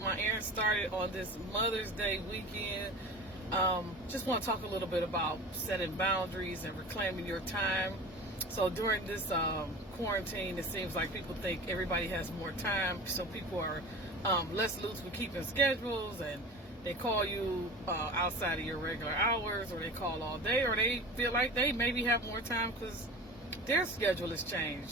my errands started on this Mother's Day weekend, just want to talk a little bit about setting boundaries and reclaiming your time. So during this quarantine, it seems like people think everybody has more time, so people are less loose with keeping schedules, and they call you outside of your regular hours, or they call all day, or they feel like they maybe have more time because their schedule has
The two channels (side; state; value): both; normal; correlation 0.35